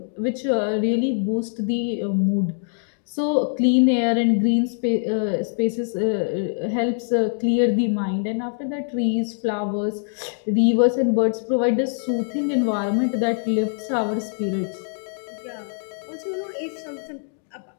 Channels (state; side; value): silent; right; digital silence